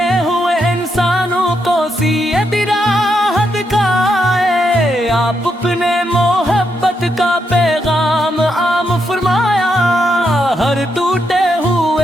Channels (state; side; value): normal; both; correlation 0.80